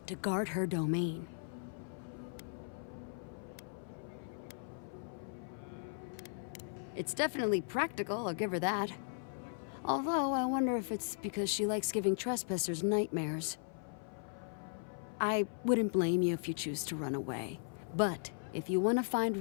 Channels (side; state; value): right; silent; 53 dB below the other